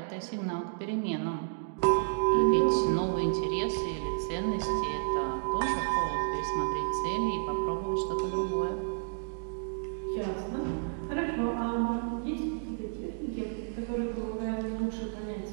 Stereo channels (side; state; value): left; silent; digital silence